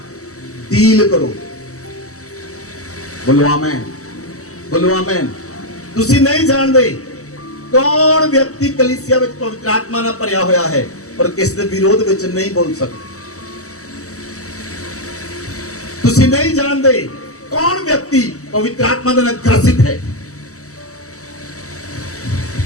डील करो। बोलो आमीन, बोलो आमीन। तुसी नहीं जानते कौन व्यक्ति कलीसिया विच पवित्र आत्मा नाल भरिया होया है और किस दे विरोध विच नहीं बोल सकते। तुसी नहीं जानते कौन व्यक्ति पवित्र आत्मा दे नाल ग्रसित है।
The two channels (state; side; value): late; right; 0.65 ms